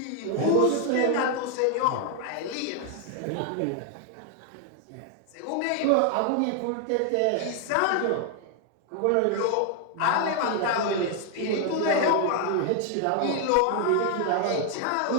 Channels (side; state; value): both; different; correlation 0.00